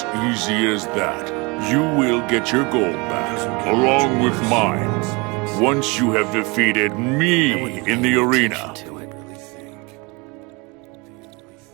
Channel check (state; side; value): quieter; left; 27.7 dB